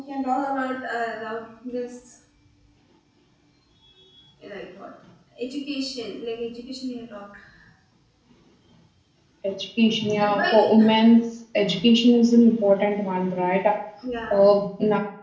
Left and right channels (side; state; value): both; identical; correlation 1.00